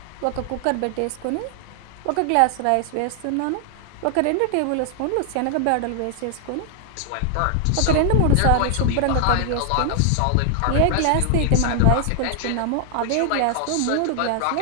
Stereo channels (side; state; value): both; different; correlation 0.00